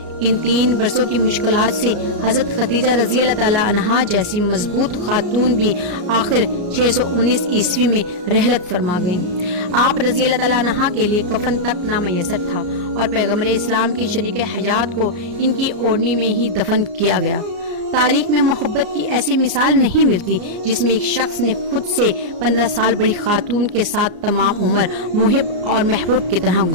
ان 3 برسوں کی مشکلات سے حضرت خدیجہ رضی اللہ تعالی عنہا جیسی مضبوط خاتون بھی آخر 619 عیسوی میں رحلت فرما گئیں۔ آپ رضی اللہ تعالی عنہا کے لیے کفن تک نامیسر تھا اور پیغمبر اسلام کی شریک حیات کو ان کی اوڑھنی میں ہی دفن کیا گیا۔ تاریخ میں محبت کی ایسی مثال نہیں ملتی جس میں ایک شخص نے خود سے 15 سال بڑی خاتون کے ساتھ تمام عمر محب اور محبوب کی طرح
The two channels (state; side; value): late; left; 34 ms